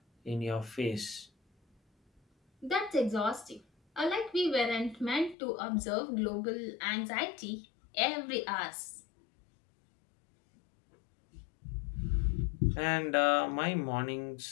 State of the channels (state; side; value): drops out; right; at 5.4 s